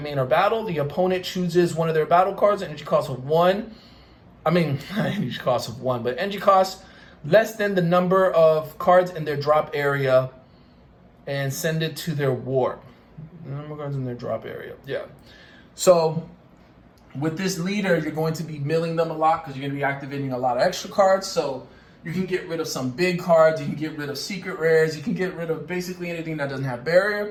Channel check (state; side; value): identical; both; correlation 1.00